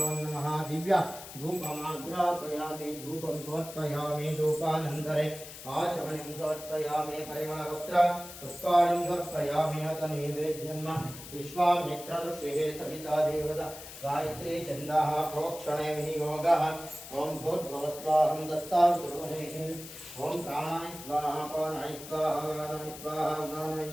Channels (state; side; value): noise; left; hiss, 13 dB below the sound